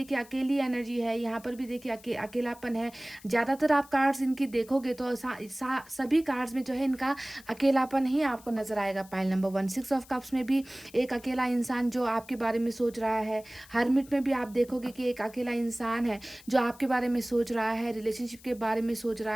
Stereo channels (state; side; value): noise; left; hiss, 23 dB below the sound